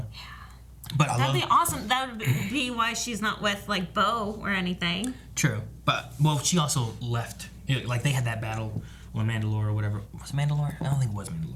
Yeah. But that'd be awesome. That would be why she's not with, like, Bo or anything. True. But, well, she also left. Like, they had that battle on Mandalore or whatever. Was it Mandalore? I don't think it was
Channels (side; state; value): both; identical; correlation 1.00